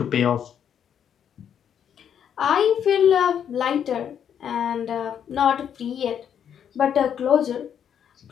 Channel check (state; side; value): quieter; right; 8.7 dB